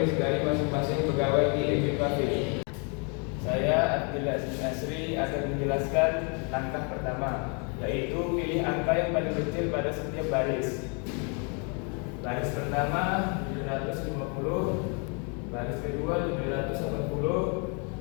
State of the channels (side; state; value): right; quieter; 36.2 dB